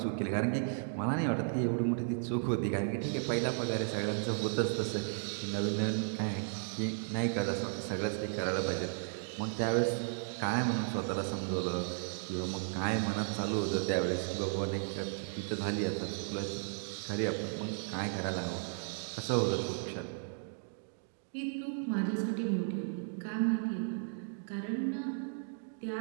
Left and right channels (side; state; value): left; silent; digital silence